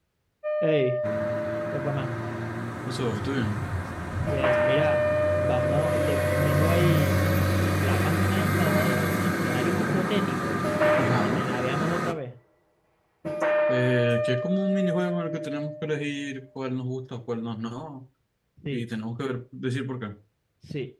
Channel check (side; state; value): both; identical; correlation 1.00